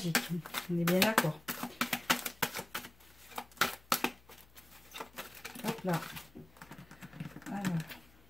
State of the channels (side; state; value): left; noise; hum, 25 dB below the sound